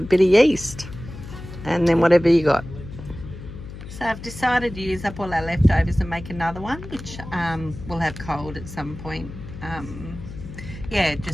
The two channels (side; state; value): left; noise; hum, 12 dB below the sound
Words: of yeast, and then whatever you got. So I've decided to use up all our leftovers and make another one, which we'll have cold at some point. Yeah,